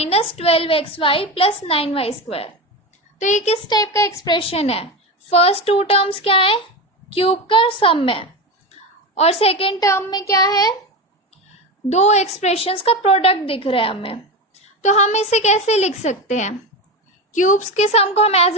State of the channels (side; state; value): both; normal; correlation 0.20